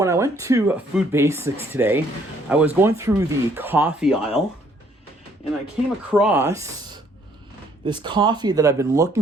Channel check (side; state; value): both; normal; correlation 0.64